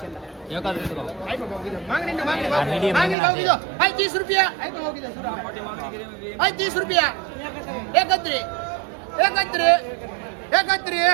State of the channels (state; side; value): drops out; left; at 3.2 s